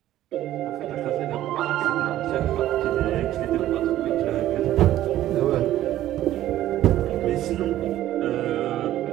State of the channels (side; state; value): left; quieter; 13.5 dB